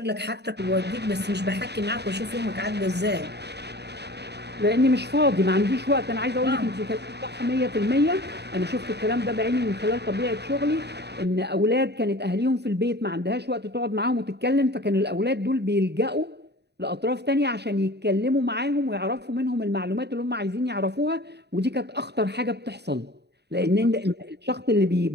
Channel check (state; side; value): late; left; 0.49 ms